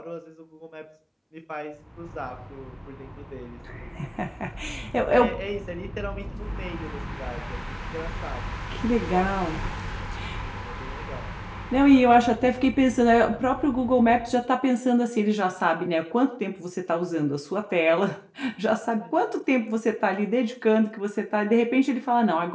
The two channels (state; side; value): identical; both; correlation 1.00